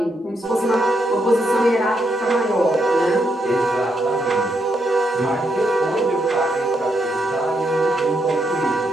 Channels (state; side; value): normal; both; correlation 0.79